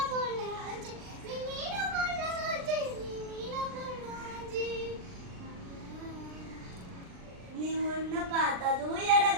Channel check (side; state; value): left; late; 39 ms